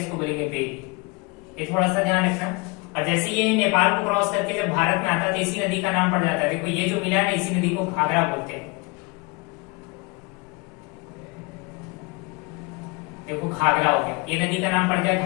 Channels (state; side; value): quieter; right; 28.2 dB